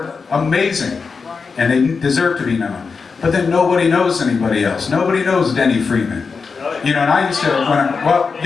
amazing, and they deserve to be known. But then nobody knows anybody else. Nobody knows Denny Freeman. You know, and I used to, well,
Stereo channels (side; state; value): right; quieter; 5.1 dB